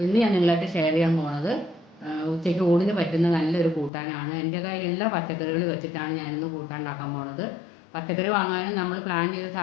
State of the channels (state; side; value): drops out; right; at 3.9 s